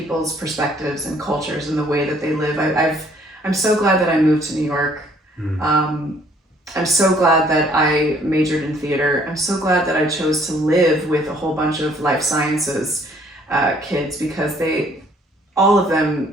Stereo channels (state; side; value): normal; both; correlation 0.62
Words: perspectives and cultures and the way that they live. I'm so glad that I moved to New York. I'm so glad that I majored in theater. I'm so glad that I chose to live with a whole bunch of life sciences kids, because all of them